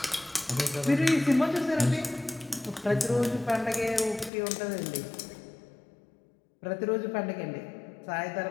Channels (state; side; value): drops out; right; at 4.3 s